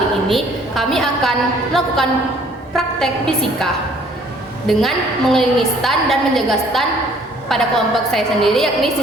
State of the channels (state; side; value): normal; both; correlation 0.58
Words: ini kami akan melakukan praktek fisika dengan mengelilingi stand dan menjaga stand pada kelompok saya sendiri yakni